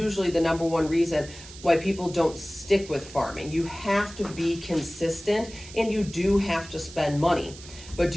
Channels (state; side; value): noise; right; hiss, 17 dB below the sound